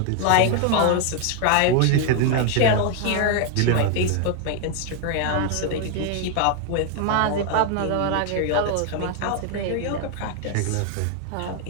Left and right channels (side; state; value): both; different; correlation 0.01